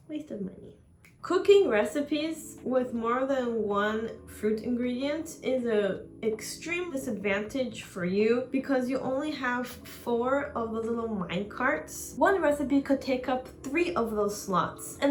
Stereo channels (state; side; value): identical; both; correlation 1.00